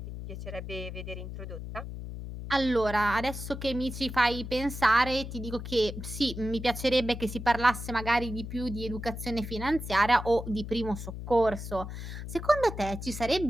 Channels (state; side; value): noise; left; hum, 8 dB below the sound